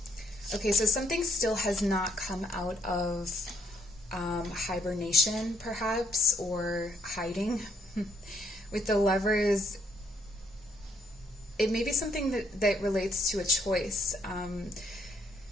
Okay, so something still has not come out of hibernation, perhaps, or hiding. With the Lovers, it may be something that relates to a choice.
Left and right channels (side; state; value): both; normal; correlation 0.71